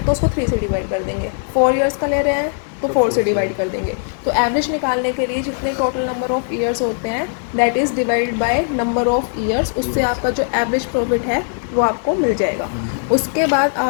तो उसको 3 से डिवाइड कर देंगे। 4 ईयर्स का ले रहे हैं तो 4 से डिवाइड कर देंगे। तो एवरेज निकालने के लिए जितने टोटल नंबर ऑफ ईयर्स होते हैं that is divide by number of years, उससे आपका जो एवरेज प्रॉफिट है वो आपको मिल जाएगा। उसके बाद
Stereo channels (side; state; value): right; silent; 58 dB below the other